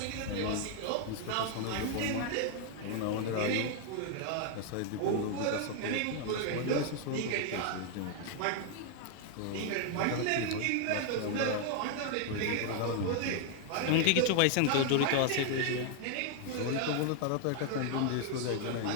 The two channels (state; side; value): different; both; correlation 0.00